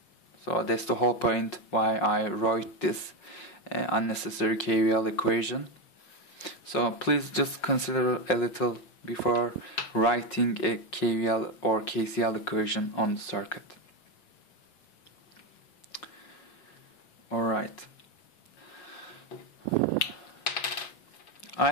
So that's the whole point why I wrote this unnecessary KVL equation. So please just consider a little before writing a KVL or KCL equation on the circuit. Alright. I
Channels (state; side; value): late; right; 5.5 ms